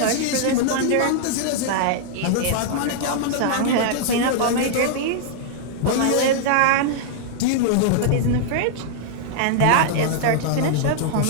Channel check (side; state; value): both; different; correlation -0.01